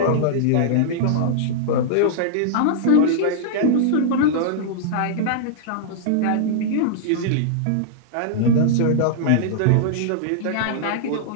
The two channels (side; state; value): both; different; correlation -0.02